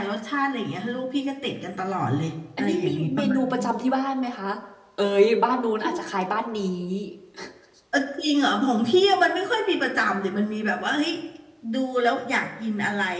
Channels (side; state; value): both; identical; correlation 1.00